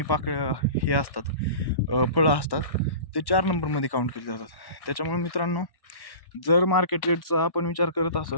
पाकळ्या हे असतात, फळं असतात, ते 4 नंबरमध्ये काउंट केले जातात. त्याच्यामुळे मित्रांनो जर मार्केट रेटचा आपण विचार करत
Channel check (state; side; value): late; right; 1.1 ms